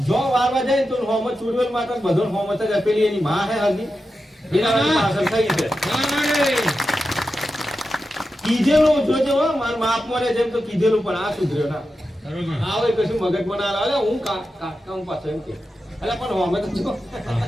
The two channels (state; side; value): normal; both; correlation 0.90